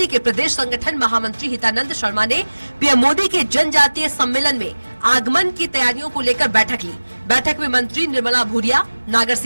के प्रदेश संगठन महामंत्री हितानंद शर्मा ने पीएम मोदी के जनजातीय सम्मेलन में आगमन की तैयारियों को लेकर बैठक ली। बैठक में मंत्री निर्मला भूरिया, नागर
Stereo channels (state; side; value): inverted; both; correlation -1.00